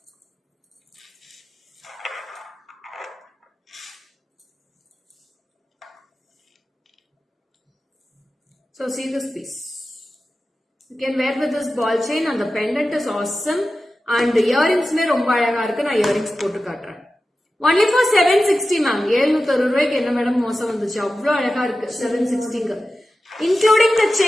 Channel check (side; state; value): both; normal; correlation 0.93